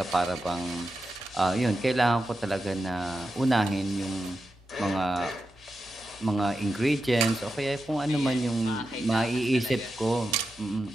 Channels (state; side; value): normal; both; correlation 0.89